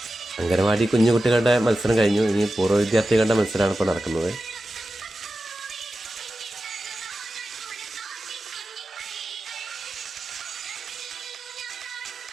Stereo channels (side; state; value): both; normal; correlation 0.93